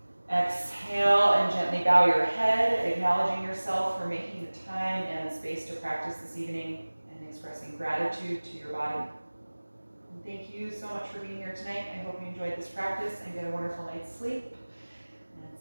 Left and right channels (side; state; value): both; inverted; correlation -1.00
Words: Exhale and gently bow your head, acknowledging yourself for making the time and space to practice this evening and expressing gratitude to your body. And thank you so much for being here tonight. I hope you enjoyed this practice and get a wonderful night's sleep. And